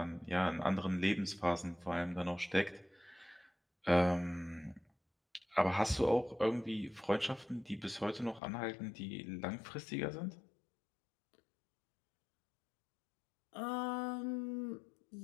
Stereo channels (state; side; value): drops out; right; at 8.4 s